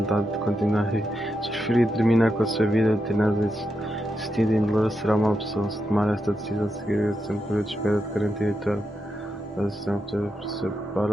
de continuar. Se preferir terminar com a sua vida, tenaz existindo em dolor, será uma opção. Se tomar esta decisão, seguirá sempre um período de espera de 48 horas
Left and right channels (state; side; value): normal; both; correlation 0.86